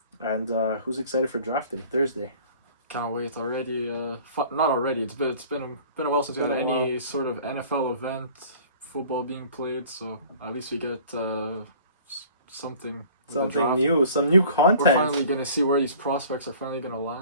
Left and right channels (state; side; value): inverted; both; correlation -0.48